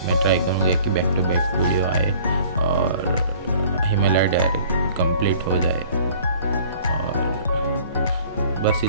मैं ट्राई करूँगी कि बैक टू बैक वीडियो आए और हिमालय डायरी कंप्लीट हो जाए। और बस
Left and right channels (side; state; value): both; inverted; correlation -0.51